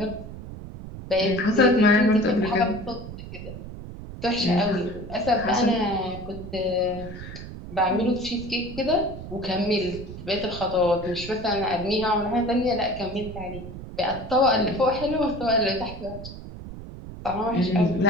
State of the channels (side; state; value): right; noise; rumble, 11 dB below the sound